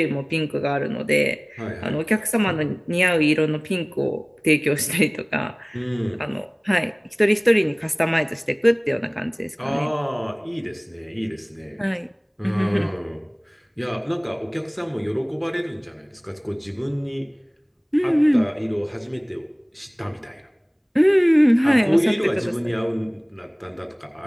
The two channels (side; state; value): both; identical; correlation 1.00